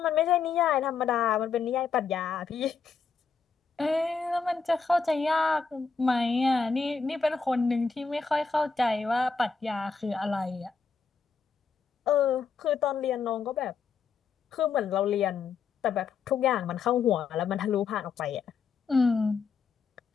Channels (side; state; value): right; quieter; 5.4 dB